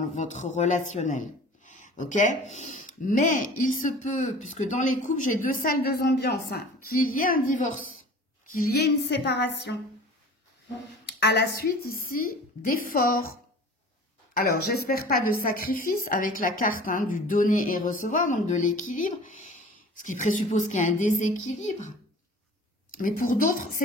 votre relationnel. Ok? Mais il se peut, puisque dans les couples, j'ai 2 salles, 2 ambiances, hein, qu'il y ait un divorce, qu'il y ait une séparation. À la suite, ici, d'efforts. Alors, j'espère pas de sacrifice avec la carte hein, du donner et recevoir, donc de l'équilibre, ce qui présuppose qu'il y a un déséquilibre. Mais pour d'autres,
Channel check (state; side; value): normal; both; correlation 0.43